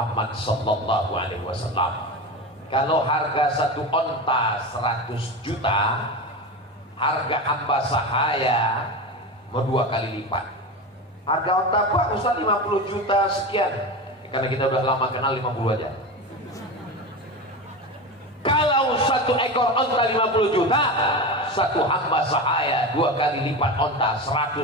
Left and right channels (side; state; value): both; normal; correlation 0.24